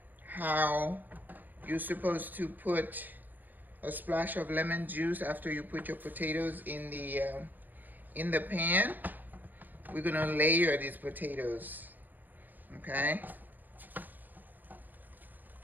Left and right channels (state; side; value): late; left; 0.086 ms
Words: how you're supposed to put a splash of lemon juice after you put your potatoes in the pan. We're gonna layer these potatoes, okay?